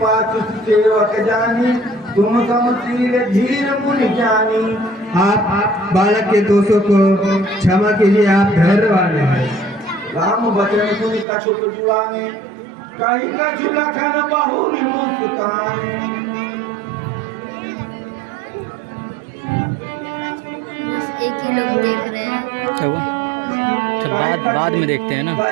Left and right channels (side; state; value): left; drops out; at 11.2 s